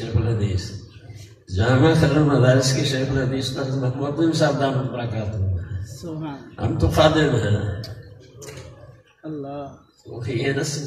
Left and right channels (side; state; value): both; identical; correlation 1.00